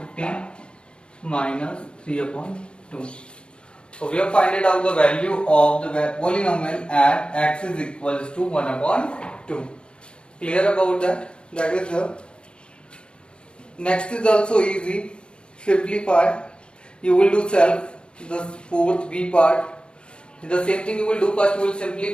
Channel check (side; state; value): right; late; 0.056 ms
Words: 15 minus 3 upon 2. So we have find out the value of the polynomial at x is equals to 1 upon 2. Clear about that? That is the next is also easy. Simplify. You will do self. The fourth B part. The same thing you will do. First you will